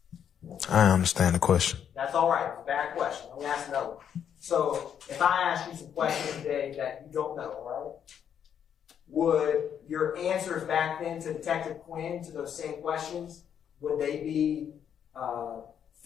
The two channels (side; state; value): right; quieter; 8.6 dB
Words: I understand the question. That's all right. It's a bad question. Let me ask another one. So, if I ask you some questions today that you don't know, all right? Would your answers back then to Detective Quinn to those same questions, would they be